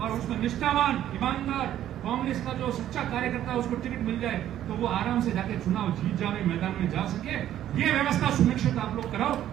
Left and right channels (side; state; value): left; quieter; 11.8 dB